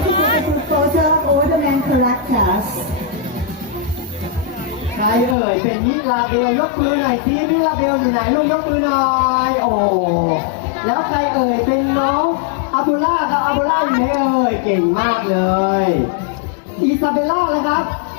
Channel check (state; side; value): drops out; right; at 5.4 s